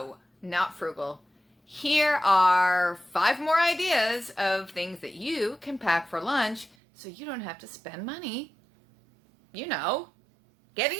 not frugal. Here are 5 more ideas of things that you can pack for lunch so you don't have to spend money, getting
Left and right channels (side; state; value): left; drops out; at 6.8 s